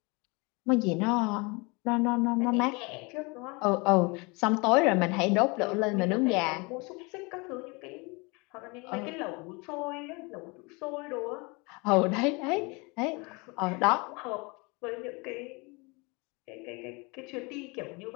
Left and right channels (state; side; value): quieter; right; 28.1 dB